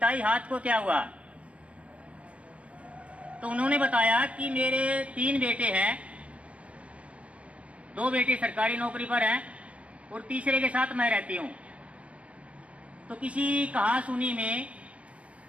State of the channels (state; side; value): late; left; 0.063 ms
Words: हाथ को क्या हुआ। तो उन्होंने बताया कि मेरे 3 बेटे हैं, 2 बेटे सरकारी नौकरी पर हैं और तीसरे के साथ मैं रहती हूँ। तो किसी कहा सुनी में